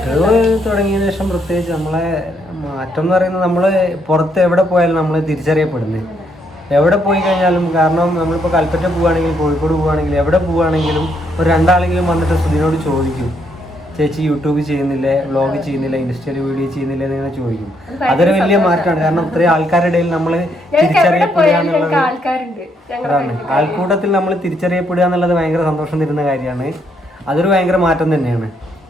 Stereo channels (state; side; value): normal; both; correlation 0.74